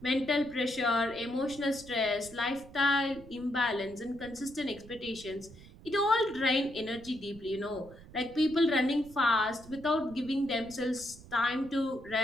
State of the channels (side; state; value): right; noise; rumble, 19 dB below the sound